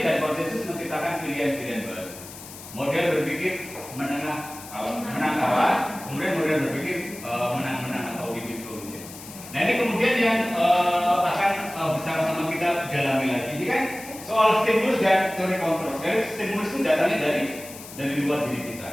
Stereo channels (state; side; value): noise; left; hiss, 15 dB below the sound